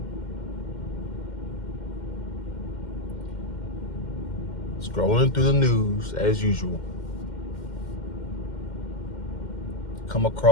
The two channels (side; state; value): right; late; 2.1 ms